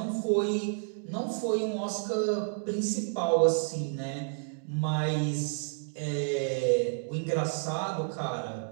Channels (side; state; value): left; silent; digital silence